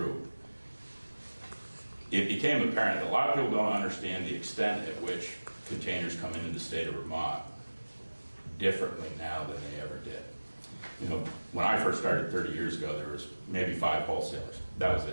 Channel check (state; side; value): inverted; both; correlation -1.00